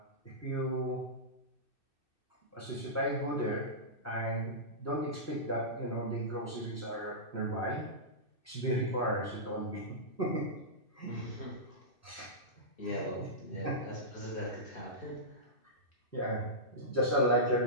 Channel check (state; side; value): late; right; 2.6 ms